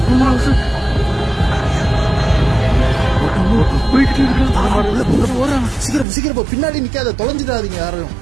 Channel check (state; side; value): drops out; left; at 6.1 s